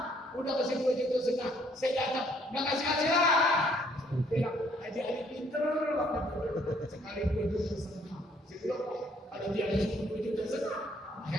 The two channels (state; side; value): normal; both; correlation 0.65